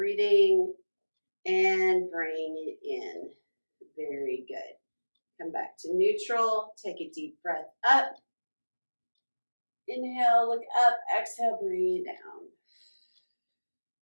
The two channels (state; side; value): inverted; both; correlation -1.00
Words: and bring it in. Very good. Come back to neutral. Take a deep breath up. Inhale, look up. Exhale, bring it down.